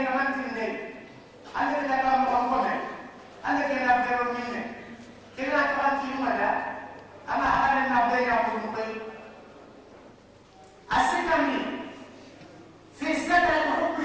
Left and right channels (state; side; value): identical; both; correlation 1.00